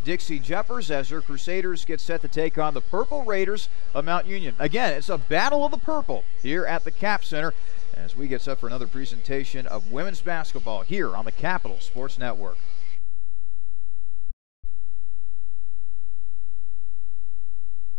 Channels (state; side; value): quieter; right; 34.7 dB